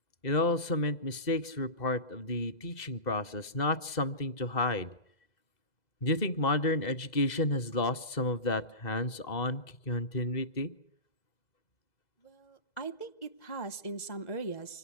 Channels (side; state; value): right; late; 2.0 ms